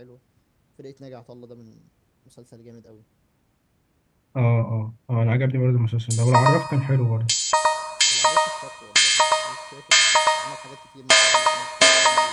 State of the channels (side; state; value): both; identical; correlation 1.00